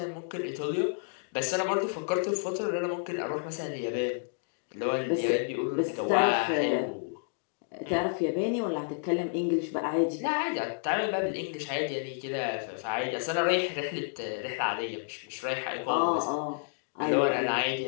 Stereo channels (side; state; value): right; silent; digital silence